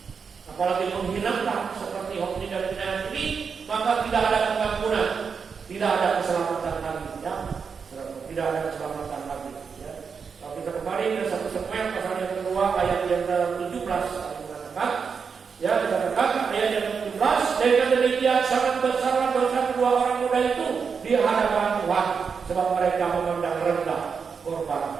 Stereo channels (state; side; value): quieter; left; 5.9 dB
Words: apalagi menghinakan seperti Hofni dan Pinayas ini, maka tidak ada pengampunan, tidak ada keselamatan lagi, ya, tidak ada keselamatan lagi, ya. Kalau kita kembali ke 1 Samuel pasal yang kedua ayat yang ke-17 mengatakan, ya, dikatakan ayat yang ke-17, dengan demikian sangat besar dosa kedua orang muda itu di hadapan Tuhan, sebab mereka memandang rendah korban